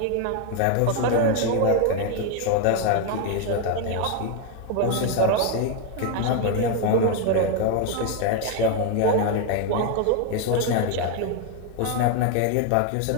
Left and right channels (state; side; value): different; both; correlation 0.01